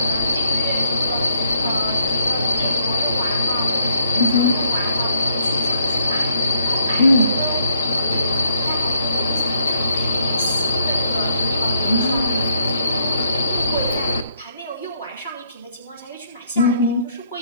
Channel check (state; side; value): inverted; both; correlation -0.68